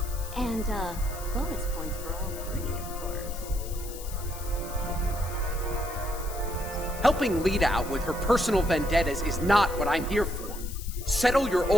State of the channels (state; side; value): noise; left; hiss, 13 dB below the sound